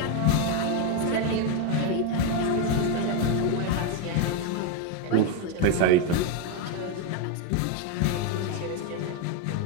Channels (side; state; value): both; different; correlation 0.02